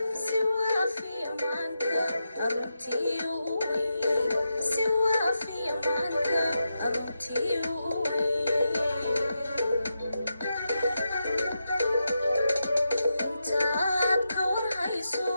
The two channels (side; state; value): both; inverted; correlation -0.87